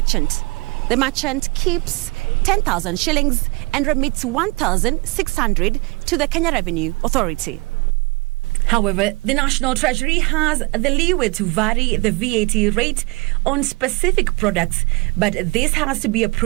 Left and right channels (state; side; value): quieter; left; 25.7 dB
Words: The merchant keeps 10,000 shillings and remits 1,600 to the Kenya Revenue Authority. However, the National Treasury has the leeway to vary the VAT rate on specific products, but this has to be